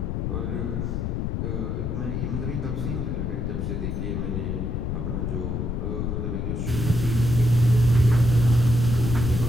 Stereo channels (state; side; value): noise; left; rumble, 1 dB below the sound